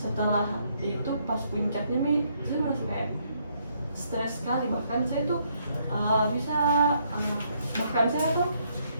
itu pas puncaknya nih saya merasa kayak stres sekali, bahkan saya tuh bahkan saya tuh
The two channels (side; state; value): both; inverted; correlation -0.72